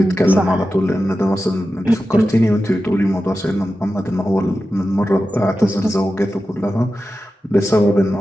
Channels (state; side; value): normal; both; correlation 0.92